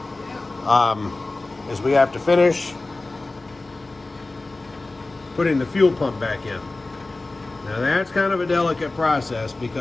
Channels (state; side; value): quieter; right; 3.2 dB